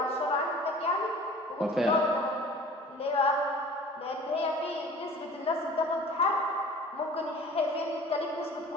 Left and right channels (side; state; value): both; normal; correlation 0.44